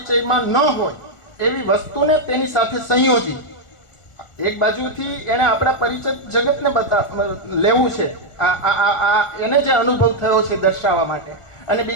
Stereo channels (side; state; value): right; late; 1.4 ms